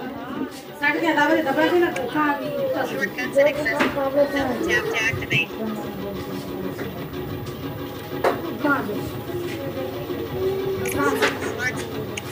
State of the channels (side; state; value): both; identical; correlation 1.00